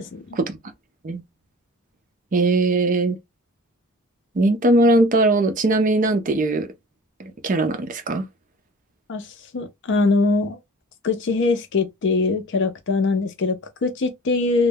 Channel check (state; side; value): normal; both; correlation 0.43